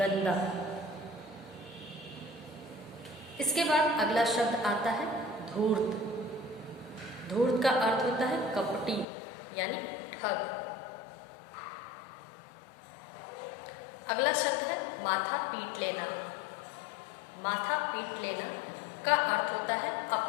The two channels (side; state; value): right; drops out; at 9.1 s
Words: इसके बाद अगला शब्द आता है धूर्त। धूर्त का अर्थ होता है कपटी यानी ठग। अगला शब्द है माथा पीट लेना। माथा पीट लेना का अर्थ होता है